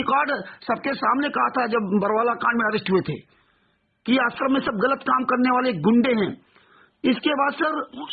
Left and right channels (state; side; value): identical; both; correlation 1.00